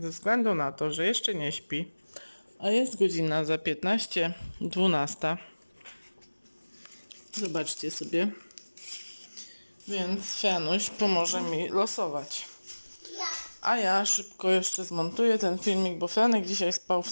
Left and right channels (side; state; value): both; inverted; correlation -1.00